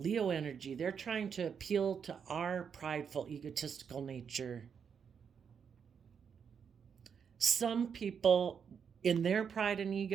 energy, they're trying to appeal to our prideful, egotistical nature. Some people, in their pride and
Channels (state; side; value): quieter; left; 7.0 dB